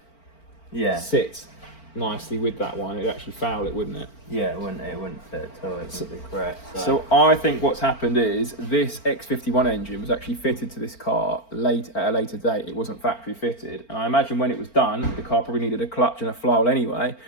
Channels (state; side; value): late; right; 4.4 ms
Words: sit nicely with that one. It'd actually foul it, wouldn't it? Yeah, it wouldn't fit at all. It would be correct. So I think what's happened is this X51 engine was actually fitted to this car at a later date. It wasn't factory fitted, and I imagine when it was done, the car probably needed a clutch and a flywheel anyway.